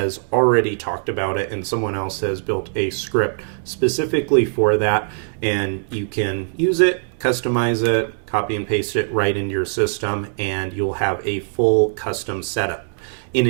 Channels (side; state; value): left; silent; 61 dB below the other